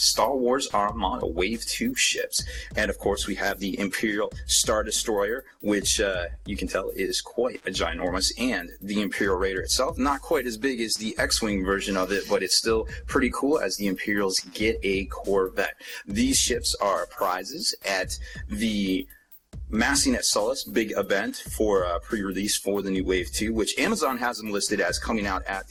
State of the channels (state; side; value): identical; both; correlation 1.00